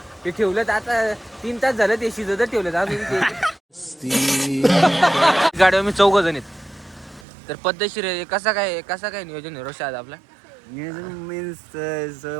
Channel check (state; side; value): drops out; left; at 7.2 s